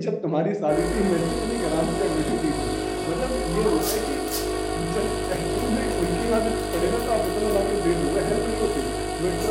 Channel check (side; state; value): both; identical; correlation 1.00